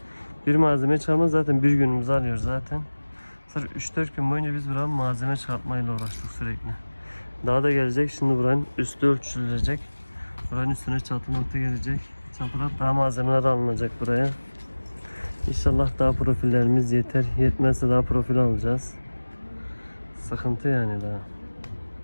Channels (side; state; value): both; inverted; correlation -1.00